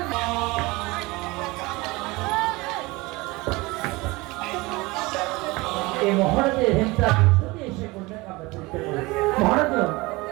এই মহারাজের হিংসা প্রস্তুতি এসে করলেন আমরা চলতে পারি। মহারাজ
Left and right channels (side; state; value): left; quieter; 22.9 dB